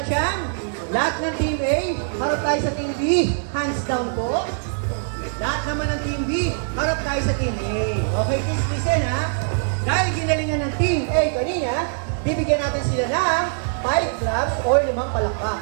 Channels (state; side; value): silent; left; 64 dB below the other